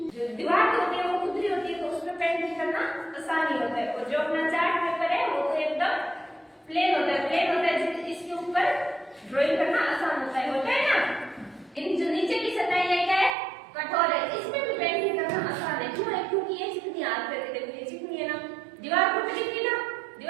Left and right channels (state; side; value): drops out; left; at 13.4 s